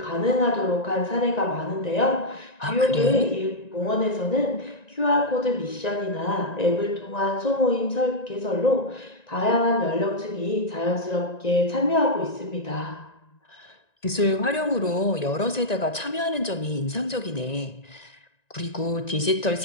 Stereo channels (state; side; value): late; right; 1.9 ms